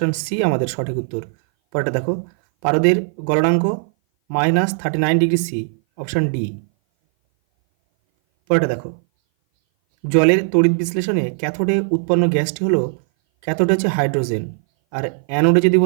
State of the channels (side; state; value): left; silent; 59 dB below the other